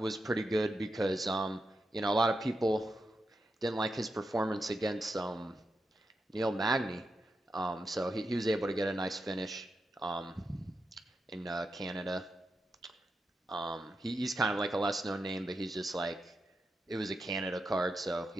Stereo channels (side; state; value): both; normal; correlation 0.87